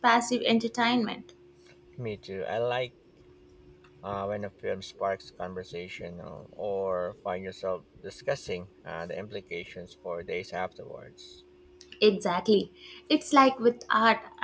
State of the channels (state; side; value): identical; both; correlation 1.00